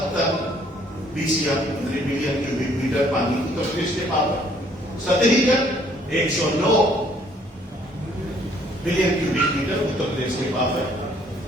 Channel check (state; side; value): normal; both; correlation 0.62